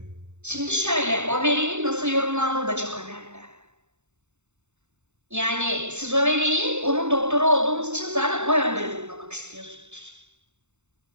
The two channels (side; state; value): left; late; 0.83 ms